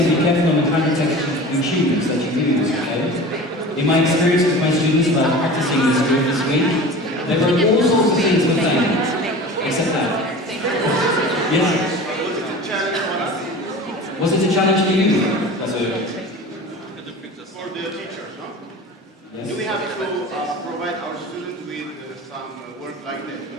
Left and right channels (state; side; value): normal; both; correlation 0.36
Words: be careful on the kind of text you choose that you use, okay? In my experience with my students about practicing this group this week, there were all sorts of things with fame, except that. Yes? Was it a challenge for you? As a... For the teachers, no? Yes. Do we have to provide our students with some work like this?